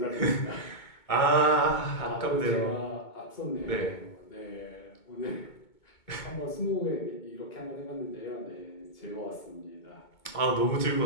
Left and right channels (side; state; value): right; late; 2.2 ms